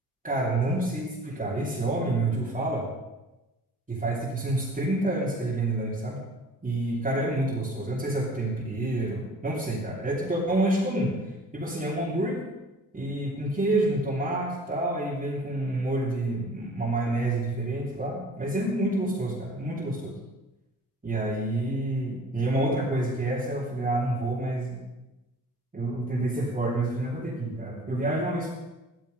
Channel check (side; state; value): both; normal; correlation 0.48